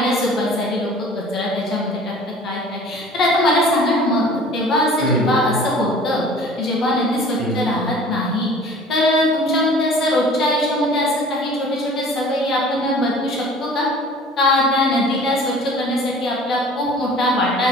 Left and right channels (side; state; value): both; normal; correlation 0.47